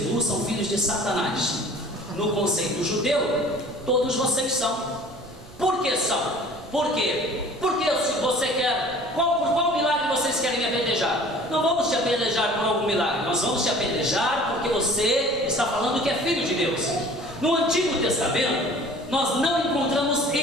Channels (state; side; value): noise; right; rumble, 21 dB below the sound